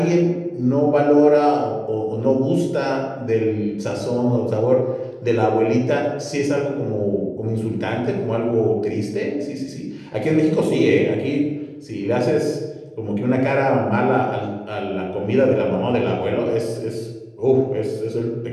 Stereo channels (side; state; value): both; identical; correlation 1.00